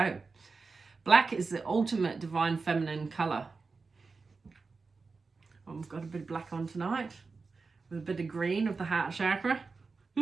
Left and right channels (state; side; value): quieter; left; 4.4 dB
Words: Black is the ultimate divine feminine colour. Oh, I've got a bit of black on tonight, with a bit of green of the heart chakra.